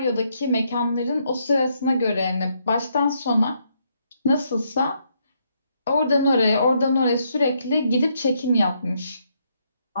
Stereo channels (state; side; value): inverted; both; correlation -0.75